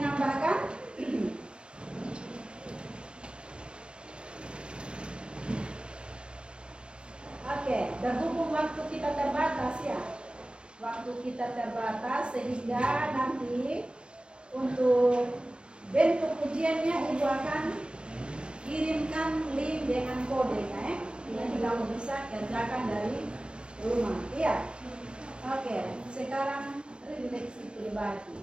Oke, berhubung waktu kita terbatas, ya. Waktu kita terbatas sehingga nanti untuk bentuk ujiannya ibu akan kirimkan link dengan kodenya, ya. Nanti kamu bisa kerjakan dari rumah, iya. Oke, sekarang refleksi pribadi.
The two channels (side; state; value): left; late; 0.056 ms